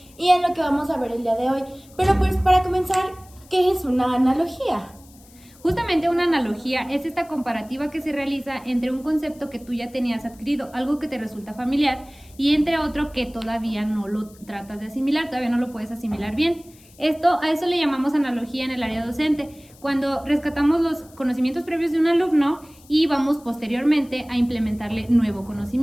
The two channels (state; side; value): noise; left; hiss, 26 dB below the sound